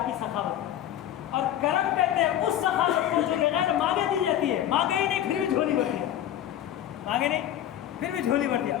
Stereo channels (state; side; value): quieter; right; 11.5 dB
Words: کی سخاوت ہے۔ اور کرم کہتے ہیں اس سخاوت کو جو بغیر مانگے دی جاتی ہے، مانگے ہی نہیں پھر بھی جھولی بھر دیا، مانگے نہیں پھر بھی جھولی بھر دیا،